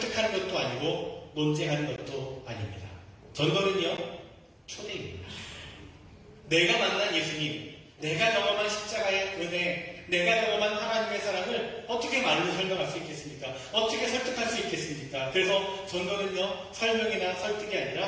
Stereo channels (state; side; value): identical; both; correlation 1.00